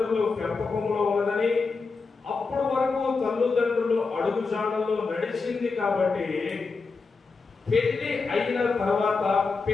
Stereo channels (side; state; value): right; quieter; 4.4 dB